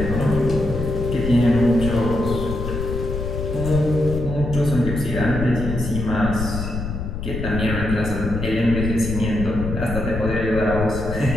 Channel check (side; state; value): left; noise; rumble, 5 dB below the sound